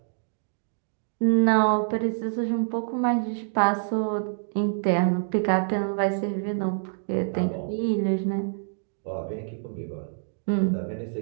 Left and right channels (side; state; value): left; silent; digital silence